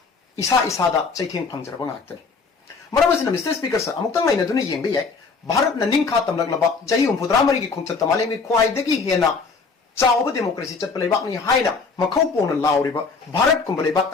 isa da chaitheng phangjaraba ngaktani. Maram asina Mr. Speaker, sir amukta mai na duni yengbe yai Bharat na ningkha tamlaklaba jahi umpudramari ki khongchat tamale mi khwaidagi hena Chawba democracy chat palebak ni haina makhau pona lauriba Bharat kumbalebak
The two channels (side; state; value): right; quieter; 4.7 dB